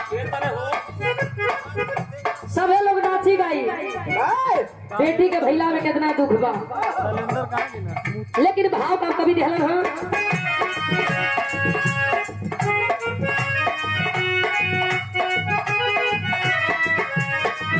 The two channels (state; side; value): identical; both; correlation 1.00